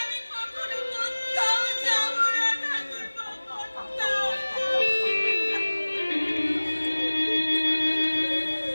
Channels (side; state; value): both; inverted; correlation -1.00